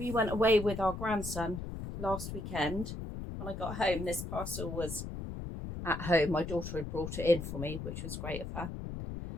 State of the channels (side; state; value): left; noise; rumble, 7 dB below the sound